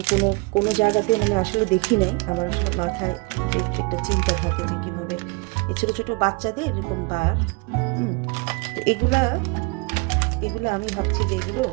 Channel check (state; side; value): quieter; left; 28.4 dB